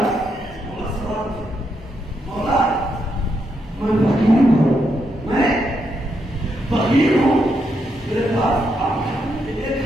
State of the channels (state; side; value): normal; both; correlation 0.80